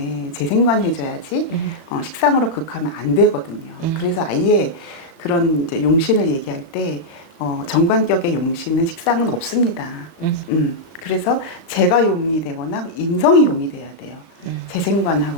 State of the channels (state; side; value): late; right; 35 ms